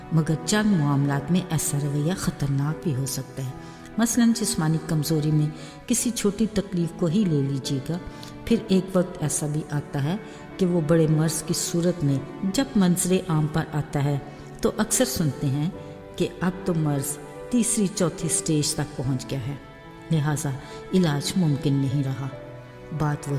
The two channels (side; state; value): both; identical; correlation 1.00